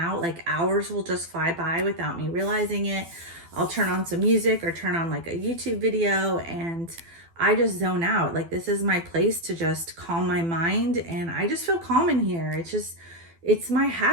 Like, hours will just fly by without me realizing it. I'll turn on some music or turn on like a YouTube video, and I just zone out. Like, this is my place to just calm my mind, and I just feel calm in here. It's my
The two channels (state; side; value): late; left; 12 ms